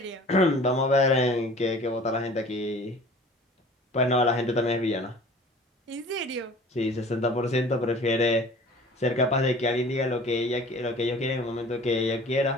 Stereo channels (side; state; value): both; normal; correlation 0.46